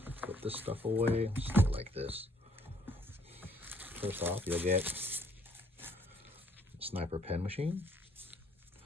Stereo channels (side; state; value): both; normal; correlation 0.64